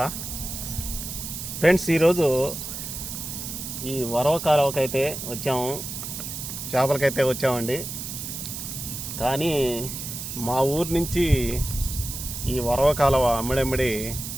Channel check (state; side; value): noise; right; hiss, 7 dB below the sound